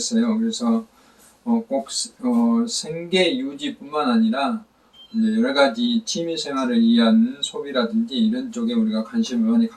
그래서 꼭 생계 유지뿐만 아니라 이제 여러 가지 취미 생활을 위한 소비라든지 이런 쪽에 우리가 관심을 많이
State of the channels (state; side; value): identical; both; correlation 1.00